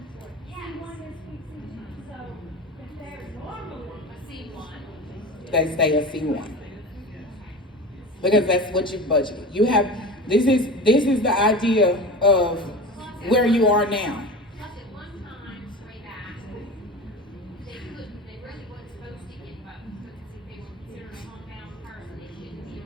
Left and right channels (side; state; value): both; normal; correlation 0.31